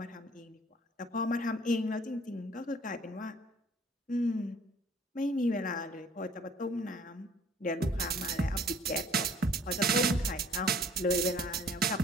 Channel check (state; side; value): normal; both; correlation 0.55